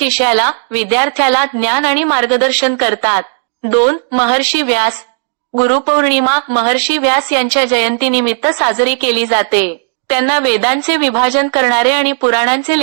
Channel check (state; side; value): silent; left; digital silence